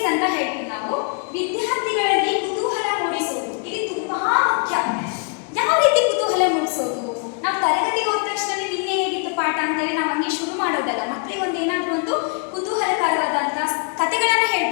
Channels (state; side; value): quieter; right; 39.2 dB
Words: ಅಂತ ಹೇಳ್ತೀವಿ ನಾವು. ವಿದ್ಯಾರ್ಥಿಗಳಲ್ಲಿ ಕುತೂಹಲ ಮೂಡಿಸುವುದು ಇಲ್ಲಿ ತುಂಬಾ ಮುಖ್ಯ. ಯಾವ ರೀತಿ ಕುತೂಹಲ ಮೂಡಿಸೋದು, ನಾವು ತರಗತಿಗೆ ಹೋದ ತಕ್ಷಣ ನಿನ್ನೆ ಹೇಗಿತ್ತು ಪಾಠ ಅಂತೇಳಿ ನಾವು ಹಂಗೆ ಶುರು ಮಾಡೋದಲ್ಲ. ಮಕ್ಕಳಿಗೆ ಒಂದು ಏನಾದರೂ ಒಂದು ಕುತೂಹಲಕರವಾದಂಥ ಕಥೆಗಳನ್ನ